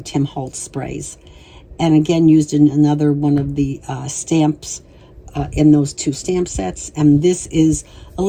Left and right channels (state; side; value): identical; both; correlation 1.00